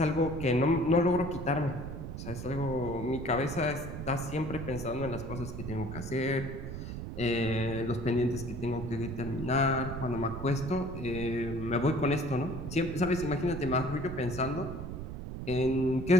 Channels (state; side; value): noise; right; rumble, 7 dB below the sound